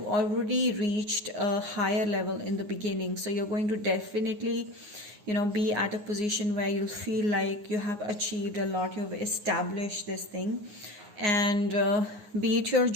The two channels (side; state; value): left; late; 9.6 ms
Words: already reached a higher level in the beginning. So you're going to definitely be at a position where you'll feel like you have achieved a lot. You've established this thing, and be it your